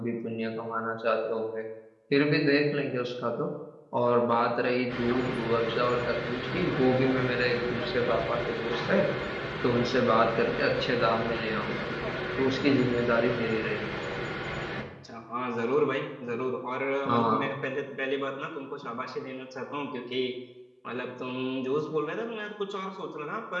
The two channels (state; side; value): identical; both; correlation 1.00